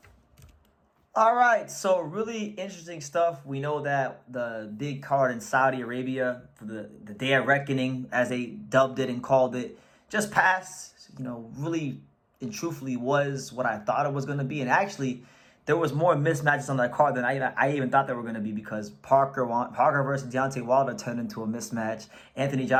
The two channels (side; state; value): both; identical; correlation 1.00